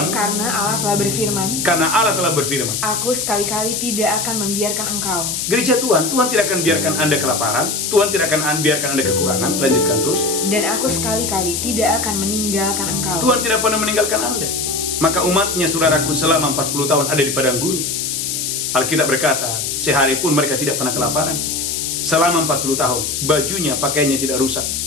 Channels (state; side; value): noise; left; hiss, 2 dB below the sound